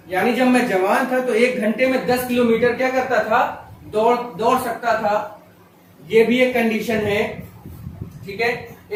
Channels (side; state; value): both; identical; correlation 1.00